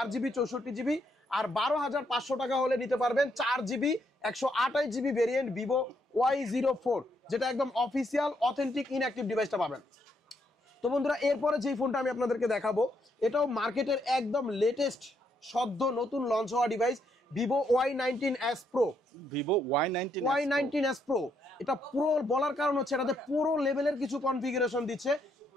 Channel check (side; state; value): both; normal; correlation 0.75